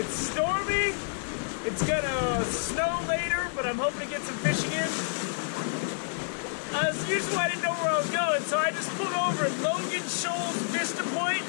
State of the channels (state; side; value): silent; right; digital silence